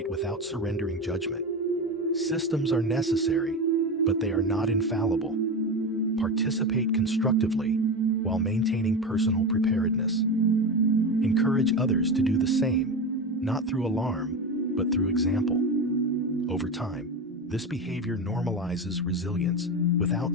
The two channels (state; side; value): normal; both; correlation 0.21